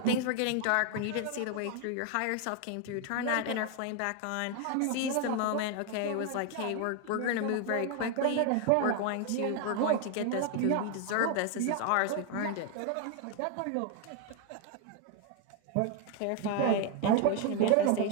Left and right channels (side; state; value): both; different; correlation 0.01